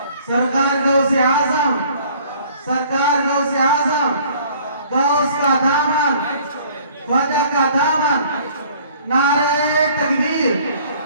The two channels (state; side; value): inverted; both; correlation -0.55